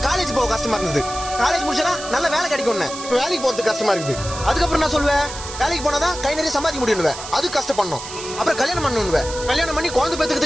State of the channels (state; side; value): noise; right; hiss, 10 dB below the sound